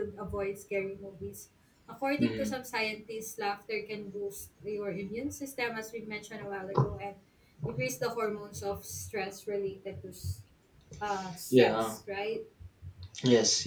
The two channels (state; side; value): identical; both; correlation 1.00